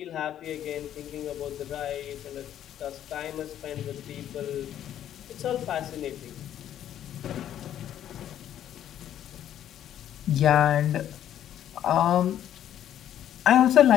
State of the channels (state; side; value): quieter; right; 10.9 dB